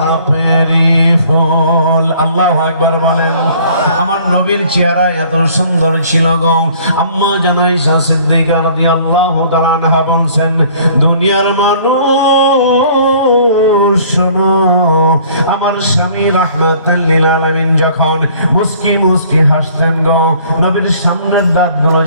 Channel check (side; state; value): both; inverted; correlation -0.55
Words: ফুল। আল্লাহু আকবার বলেন। আমার নবীর চেহারা এত সুন্দর ছিল গো, আম্মা জান আয়েশা সিদ্দিকা রাদিয়াল্লাহু তাআলা আনহা বলছেন, দুনিয়ার মানুষ শোনো, আমার স্বামী রাহমাতাল লিল আলামিন যখন মুস্কি মুস্কি হাসতেন গো, নবীর সামনের দাঁতগুলো